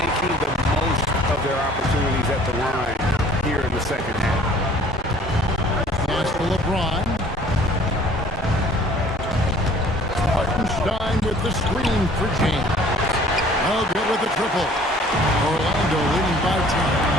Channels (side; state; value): both; normal; correlation 0.54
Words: the most of their opportunities at the line here in the second half. Pass to LeBron. Hartenstein with the screen for James. Oh, good with the triple. Orlando leading by 10.